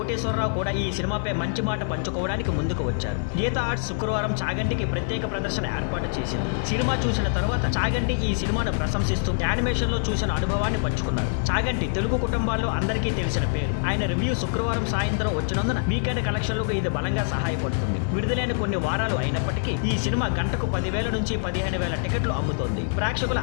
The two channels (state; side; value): silent; right; digital silence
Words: కూడా ఈ సినిమాపై మంచి మాట పంచుకోవడానికి ముందుకు వచ్చారు. గీతా ఆర్ట్స్ శుక్రవారం చాగంటికి ప్రత్యేక ప్రదర్శన ఏర్పాటు చేసింది. సినిమా చూసిన తర్వాత చాగంటి ఈ సినిమాను ప్రశంసిస్తూ యానిమేషన్ లో చూసిన అనుభవాన్ని పంచుకున్నారు. చాగంటి తెలుగు కుటుంబాల్లో అందరికీ తెలిసిన పేరు. ఆయన రివ్యూ శుక్రవారం సాయంత్రం వచ్చినందున వీకెండ్ కలెక్షన్లకు ఇది బలంగా సహాయపడుతుంది. విడుదలైన కొన్ని వారాలు అయినప్పటికీ ఈ సినిమా గంటకు 10,000 నుంచి 15,000 టికెట్లు అమ్ముతోంది. ప్రేక్షకుల